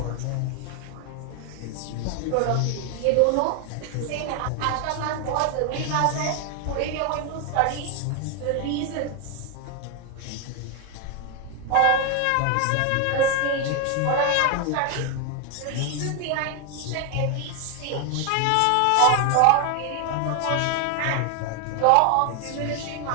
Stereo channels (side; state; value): both; different; correlation 0.01